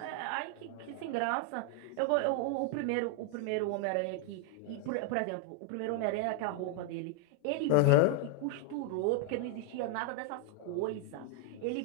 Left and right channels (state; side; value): different; both; correlation 0.00